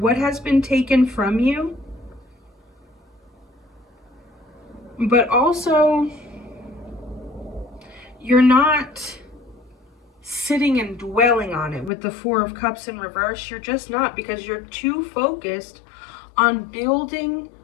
has been taken from you. But also, you're not sitting and dwelling on it with the Four of Cups in reverse. You're just not, because you're too focused on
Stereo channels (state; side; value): drops out; right; at 11.9 s